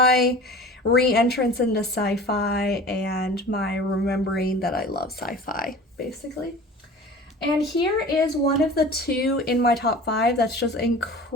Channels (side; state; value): both; normal; correlation 0.40